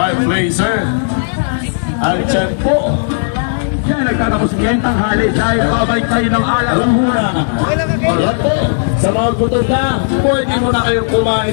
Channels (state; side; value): silent; right; digital silence